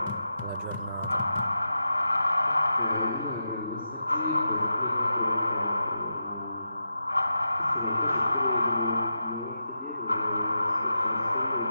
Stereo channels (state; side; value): inverted; both; correlation -0.87